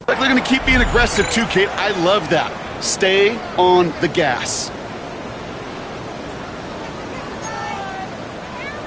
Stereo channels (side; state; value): both; identical; correlation 1.00